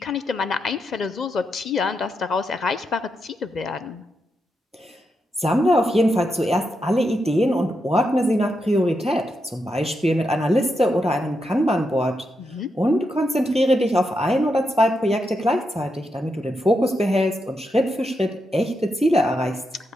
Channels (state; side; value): normal; both; correlation 0.84